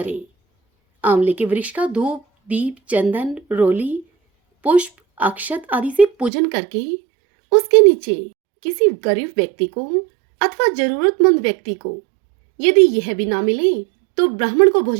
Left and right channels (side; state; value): left; drops out; at 6.3 s